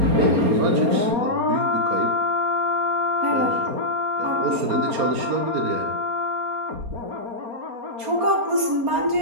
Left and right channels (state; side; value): late; left; 4.3 ms